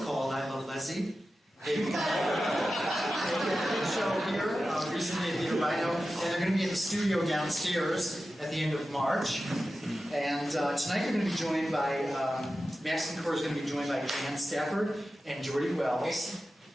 called I Love Lezzie. They did a show here recently at the Rhino, and they're going to be at the studio downstairs at the end of March. And tonight they're going to be joined by, Max Kincora is going to be joined by Dan Stafford and Jordy Wells.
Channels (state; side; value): normal; both; correlation 0.93